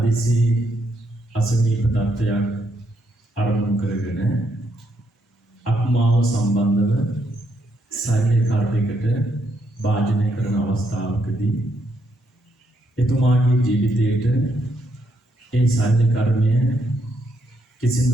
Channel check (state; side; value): normal; both; correlation 0.76